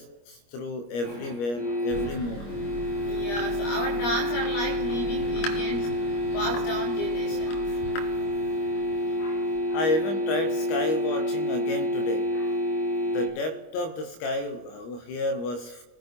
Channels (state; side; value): late; right; 25 ms